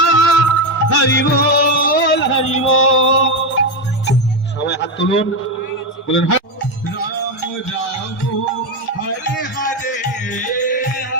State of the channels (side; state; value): both; normal; correlation 0.10